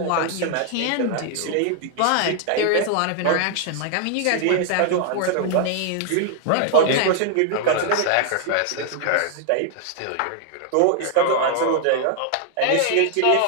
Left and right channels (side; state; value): both; different; correlation 0.00